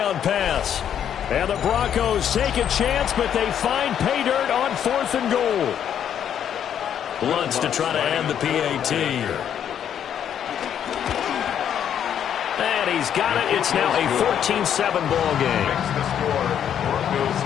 pass. And the Broncos take a chance, but they find pay dirt on 4th and goal. Lutz to try to end the PAT. And he's got it. It's now a 14-7 ball game. Next to score, Broncos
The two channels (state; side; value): quieter; right; 9.3 dB